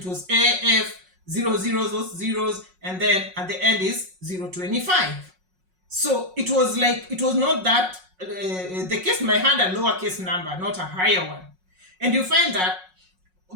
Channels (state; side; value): late; left; 5.5 ms